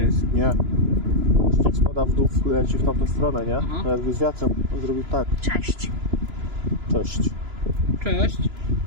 miejsca. Nie. Śnieg spada w dół, leci w tamtą stronę, nie? Aha. No jakby z wiatrem on zrobił tak. Cześć. Cześć. Cześć.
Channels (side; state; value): left; late; 2.9 ms